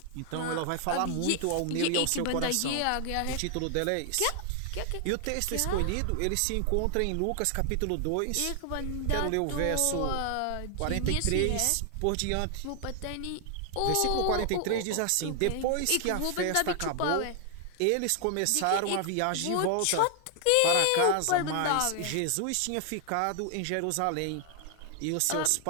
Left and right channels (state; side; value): different; both; correlation 0.00